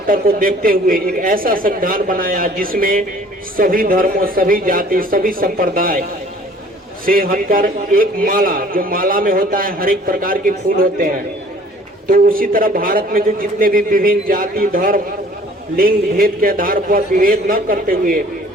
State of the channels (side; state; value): both; normal; correlation 0.53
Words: को देखते हुए एक ऐसा संविधान बनाया जिसमें सभी धर्मों, सभी जाति, सभी संप्रदाय से हटकर एक माला, जो माला में होता है हर एक प्रकार के फूल होते हैं, तो उसी तरह भारत में जो जितने भी विभिन्न जाति, धर्म, लिंग भेद के आधार पर विभेद न करते हुए